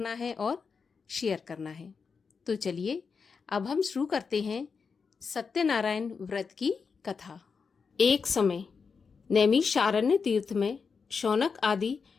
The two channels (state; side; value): quieter; right; 5.4 dB